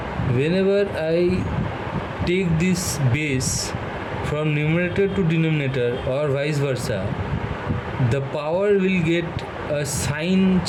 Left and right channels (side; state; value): both; identical; correlation 1.00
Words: whenever I take this base from numerator to denominator or vice versa, the power will get a sign